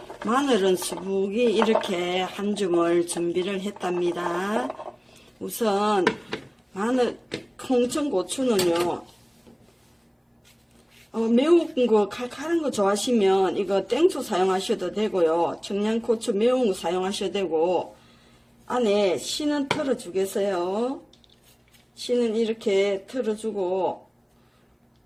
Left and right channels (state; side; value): identical; both; correlation 1.00